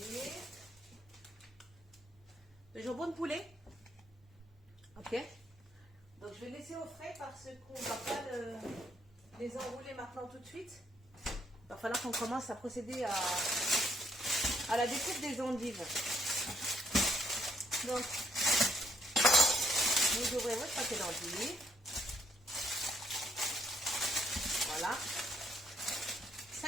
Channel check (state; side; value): normal; both; correlation 0.71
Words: le jambon de poulet. Ok. Donc je vais laisser au frais parce qu'on ne va pas les enrouler maintenant tout de suite. Il va falloir qu'on commence à procéder à la découpe des endives. Donc, vous ouvrez votre paquet d'endives. Voilà.